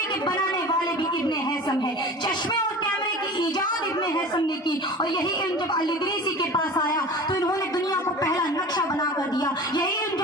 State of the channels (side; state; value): both; normal; correlation 0.37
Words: کے بنانے والے بھی ابن ہیثم ہے۔ چشمے اور کیمرے کی ایجاد ابن ہیثم نے کی، اور یہی علم جب الادریسی کے پاس آیا تو انہوں نے دنیا کو پہلا نقشہ بنا کر دیا۔ یہی علم